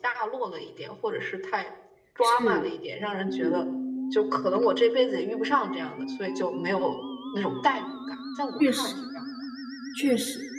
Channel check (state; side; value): identical; both; correlation 1.00